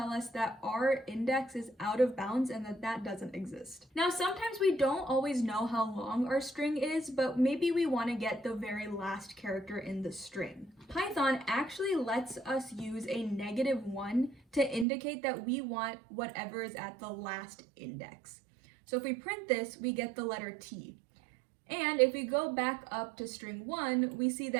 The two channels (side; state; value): left; drops out; at 14.9 s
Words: us that our index is out of bounds and that doesn't exist. Now, sometimes we don't always know how long our string is, but maybe we want to get the very last character in the string. Python actually lets us use a -1 to indicate that we want whatever is at the last index. So if we print this, we get the letter T. And if we go back up to string 1, we see